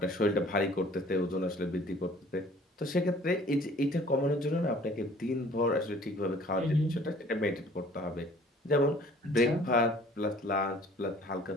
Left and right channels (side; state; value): both; normal; correlation 0.53